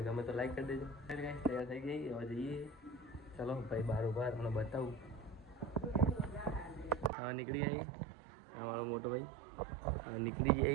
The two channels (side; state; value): left; drops out; at 7.1 s